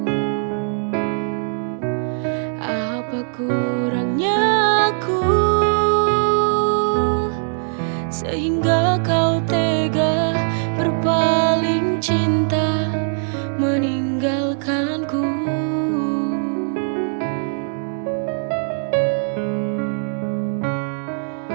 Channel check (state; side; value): silent; left; digital silence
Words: Apa kurangnya aku sehingga kau tega berpaling cinta meninggalkanku.